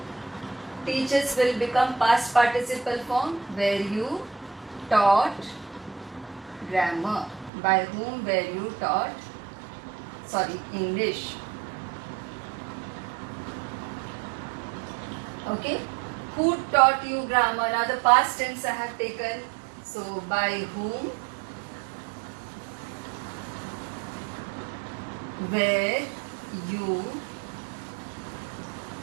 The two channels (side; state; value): left; drops out; at 7.5 s